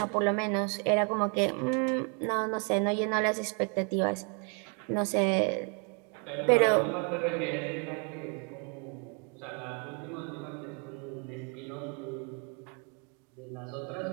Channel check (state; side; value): quieter; left; 37.7 dB